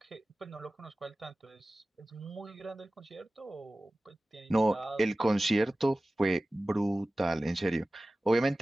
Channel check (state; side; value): normal; both; correlation 0.97